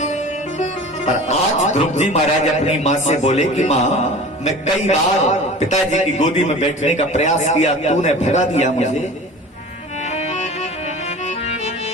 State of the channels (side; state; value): both; normal; correlation 0.39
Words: पर आज ध्रुव जी महाराज अपनी माँ से बोले कि माँ, मैं कई बार पिताजी की गोदी में बैठने का प्रयास किया, तूने भगा दिया मुझे।